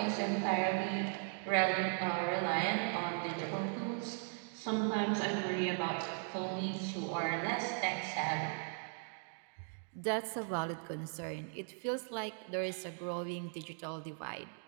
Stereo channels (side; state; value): left; silent; 52 dB below the other